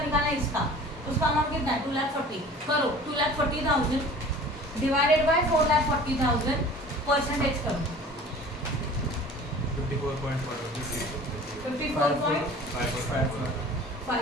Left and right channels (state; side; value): normal; both; correlation 0.44